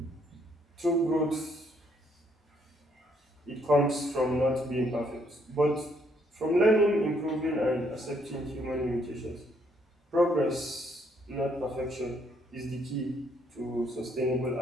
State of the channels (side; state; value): both; normal; correlation 0.70